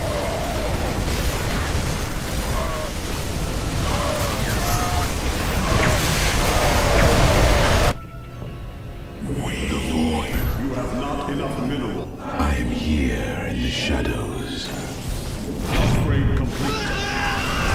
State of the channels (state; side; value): identical; both; correlation 1.00